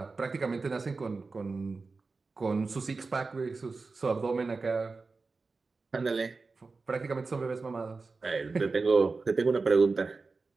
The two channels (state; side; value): quieter; left; 4.1 dB